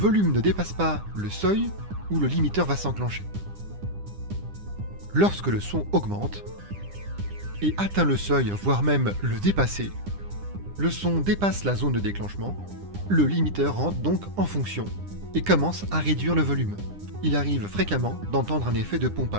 ne dépasse pas le seuil où le limiteur va s'enclencher. Lorsque le son augmente et atteint le seuil, voire même le dépasser, le son dépasse la zone de déclenchement, le limiteur rentre donc en fonction et commence à réduire le volume. Il arrive fréquemment d'entendre un effet de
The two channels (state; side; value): late; left; 9.9 ms